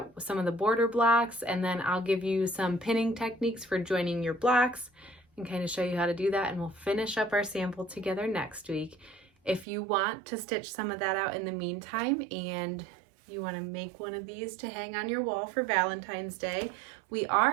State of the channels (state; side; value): drops out; left; at 9.7 s